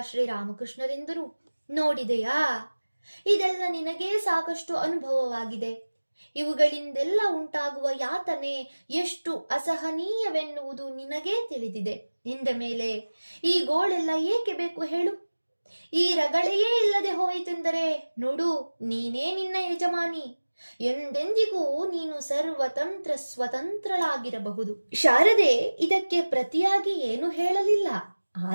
ಶ್ರೀರಾಮಕೃಷ್ಣರೆಂದರು, ನೋಡಿದೆಯಾ, ಇದೆಲ್ಲ ನಿನಗೇ ಸಾಕಷ್ಟು ಅನುಭವವಾಗಿದೆ. ಇವುಗಳಿಂದೆಲ್ಲ ಉಂಟಾಗುವ ಯಾತನೆ ಎಷ್ಟು ಅಸಹನೀಯವೆನ್ನುವುದು ನಿನಗೇ ತಿಳಿದಿದೆ. ಇಂದ ಮೇಲೆ ಈ ಗೋಳೆಲ್ಲ ಏಕೆ ಬೇಕು ಹೇಳು? ಈ ರಗಳೆಯೇ ಇಲ್ಲದೆ ಹೋಯಿತೆಂದರೆ ನೋಡು, ನೀನೇ ನಿನ್ನ ಯಜಮಾನಿ. ಎಂದೆಂದಿಗೂ ನೀನು ಸರ್ವತಂತ್ರ ಸ್ವತಂತ್ರಳಾಗಿರಬಹುದು. ಶಾರದೆ ಇದಕ್ಕೆ ಪ್ರತಿಯಾಗಿ ಏನು ಹೇಳಲಿಲ್ಲ.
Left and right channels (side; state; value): both; inverted; correlation -1.00